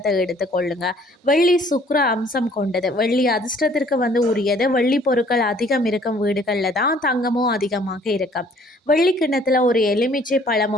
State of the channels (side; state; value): both; normal; correlation 0.58